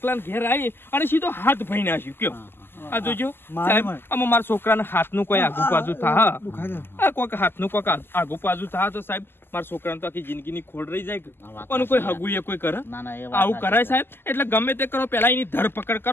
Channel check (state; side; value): late; right; 0.11 ms